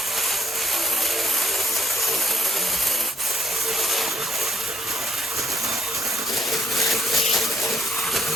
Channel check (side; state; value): both; normal; correlation 0.68